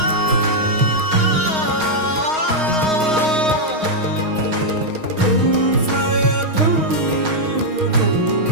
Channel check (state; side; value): late; left; 6.4 ms